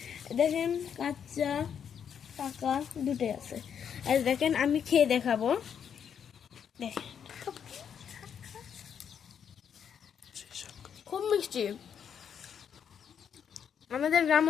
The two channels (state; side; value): quieter; right; 7.9 dB